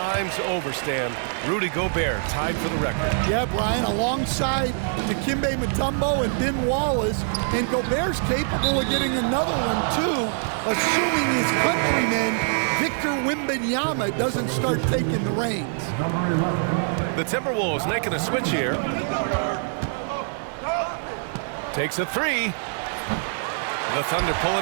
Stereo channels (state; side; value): silent; left; digital silence